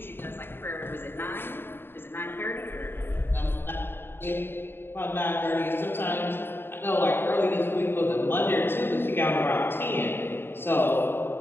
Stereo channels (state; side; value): late; right; 0.10 ms